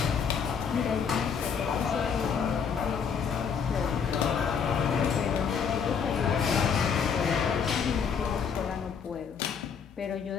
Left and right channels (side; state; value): right; quieter; 6.6 dB